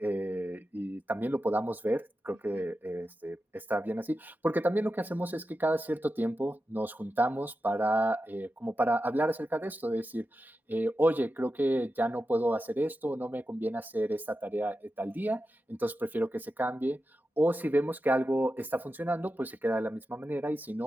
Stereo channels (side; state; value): both; normal; correlation 0.91